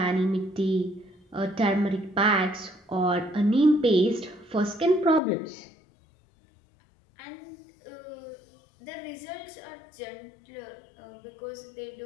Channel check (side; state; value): right; drops out; at 5.2 s